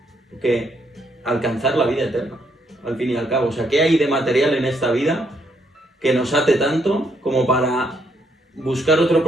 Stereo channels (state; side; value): normal; both; correlation 0.74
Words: que alcanzar la vida eterna, al fin y al cabo? O sea, ¿qué hay de material en esta vida que nos ate tanto como para buscar otro